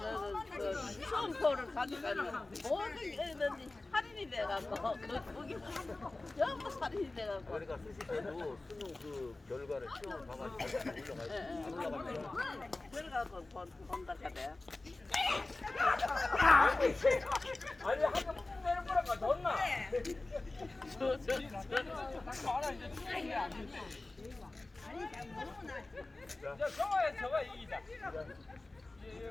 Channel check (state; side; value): quieter; right; 3.0 dB